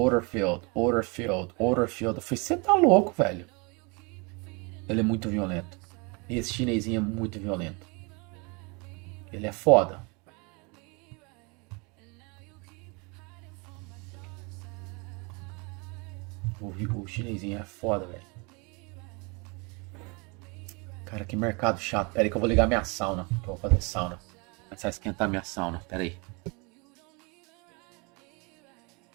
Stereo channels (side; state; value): left; quieter; 30.3 dB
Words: field, order field, order field. Eu falei, você tá louco, velho. Ele é muito violento. Esse chinesinho é muito violento. Ele é foda. O chinesinho é foda, velho. Cara, que mercado chato. Pera aí que eu vou ligar minha sauna. Que eu vou fazer sauna. Começar a esquentar minha sauna. Pera aí.